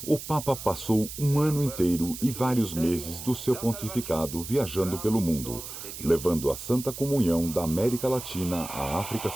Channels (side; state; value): right; noise; hiss, 10 dB below the sound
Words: o Papa passou um ano inteiro e vários meses do seu pontificado viajando pelo mundo, levando a Santa Comunhão da América Latina à África